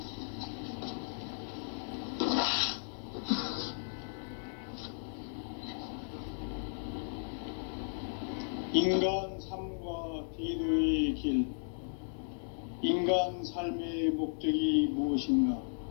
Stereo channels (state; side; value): silent; right; digital silence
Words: 인간 삶과 대도의 길. 인간 삶의 목적이 무엇인가?